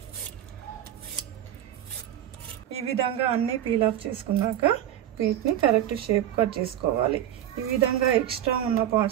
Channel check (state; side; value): quieter; left; 11.5 dB